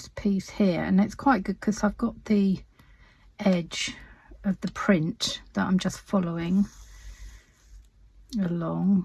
piece here, and it's quite good because I've got the edge of the print that I'm just following along,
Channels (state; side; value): identical; both; correlation 1.00